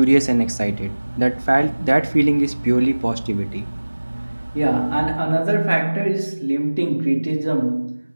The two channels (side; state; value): both; inverted; correlation -1.00